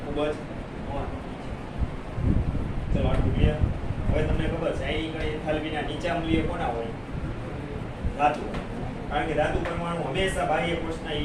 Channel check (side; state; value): both; identical; correlation 1.00